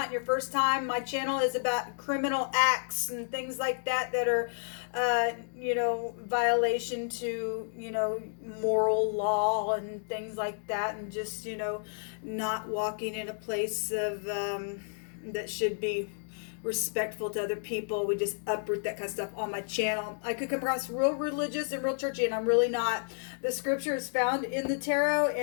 your first time, my channel is about criminal acts and things like that that are violation to, moral law and things like that, and just, not walking in a place of that should be respectful to other people. We just uproot that kind of stuff on my channel. I could come across real religious and real churchy, and I'm really not. The scripture is found in the tarot,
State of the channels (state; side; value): silent; right; digital silence